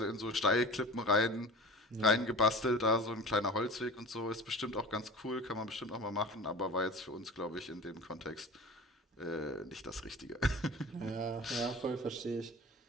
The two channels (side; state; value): both; normal; correlation 0.36